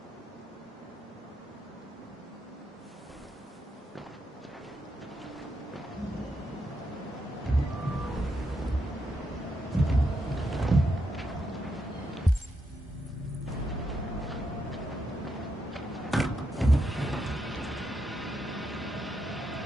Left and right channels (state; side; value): normal; both; correlation 0.82